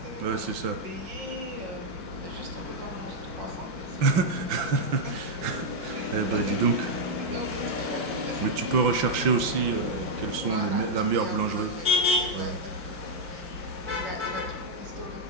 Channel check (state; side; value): late; left; 5.8 ms